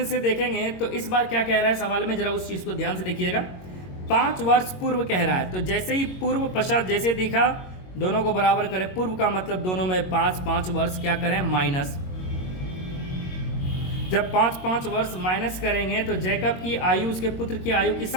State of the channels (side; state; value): right; late; 22 ms